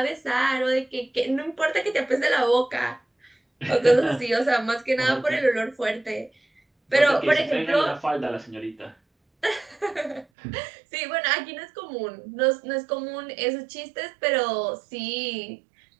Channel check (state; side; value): drops out; left; at 10.2 s